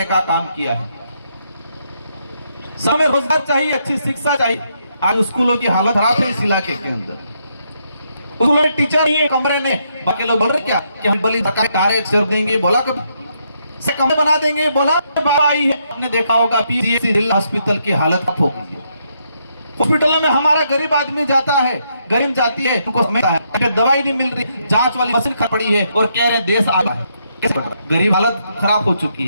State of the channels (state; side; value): inverted; both; correlation -0.76